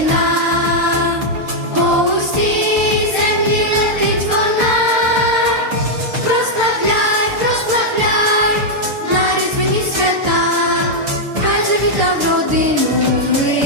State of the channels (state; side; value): late; left; 6.7 ms